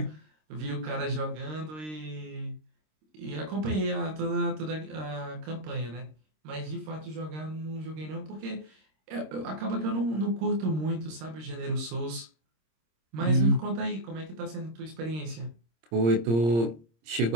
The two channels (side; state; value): left; late; 26 ms